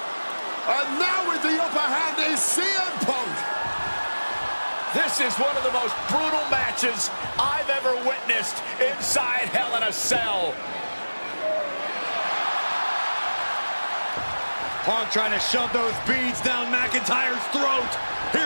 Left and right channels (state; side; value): inverted; both; correlation -1.00